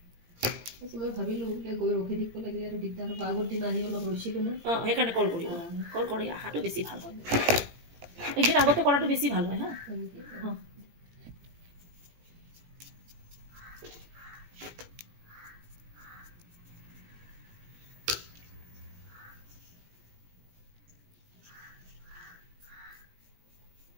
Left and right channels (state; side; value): late; left; 17 ms